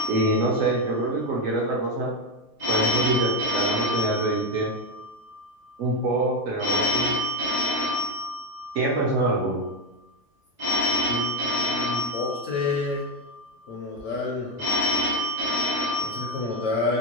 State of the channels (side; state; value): both; normal; correlation 0.09